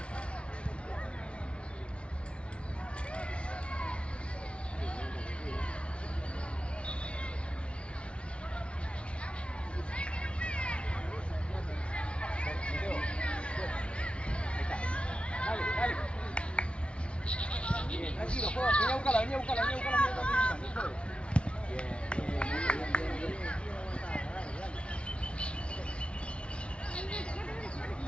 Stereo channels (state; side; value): late; right; 0.059 ms